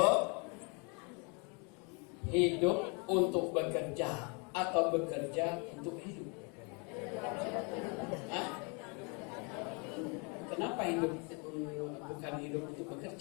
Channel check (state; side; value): quieter; right; 33.6 dB